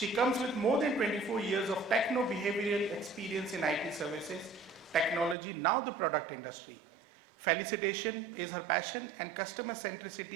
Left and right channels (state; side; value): drops out; left; at 5.4 s